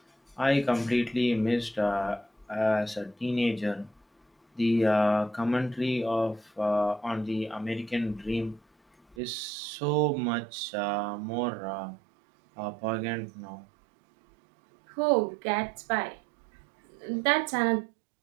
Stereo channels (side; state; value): left; drops out; at 9.2 s